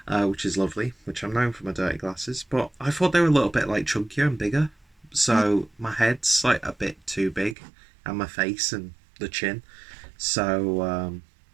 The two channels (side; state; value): left; drops out; at 7.6 s